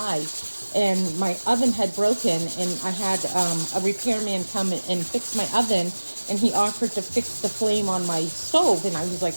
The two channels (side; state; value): both; inverted; correlation -1.00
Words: and my oven had broken, and I had a repairman come and fix my oven, and he offered to fix the flame on my stove, and I was like,